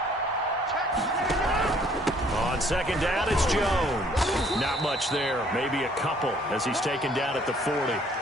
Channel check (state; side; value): normal; both; correlation 0.61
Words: On 2nd down, it's Jones. Not much there, maybe a couple as he's taken down at the 40.